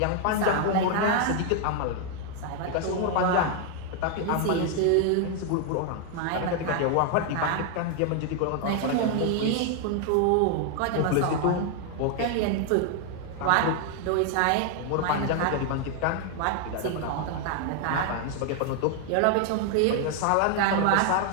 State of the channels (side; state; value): both; different; correlation 0.00